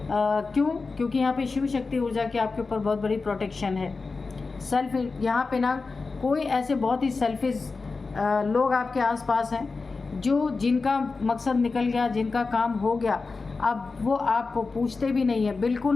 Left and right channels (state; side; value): quieter; right; 4.1 dB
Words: क्यों? क्योंकि यहाँ पे शिव शक्ति ऊर्जा की आपके ऊपर बहुत बड़ी प्रोटेक्शन है। सेल्फ यहाँ पे ना कोई ऐसे बहुत ही सेल्फिश लोग आपके आसपास हैं, जो जिनका मकसद निकल गया, जिनका काम हो गया, अब वो आपको पूछते भी नहीं है,